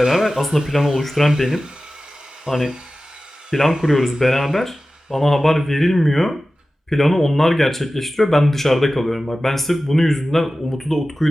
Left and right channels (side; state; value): both; normal; correlation 0.95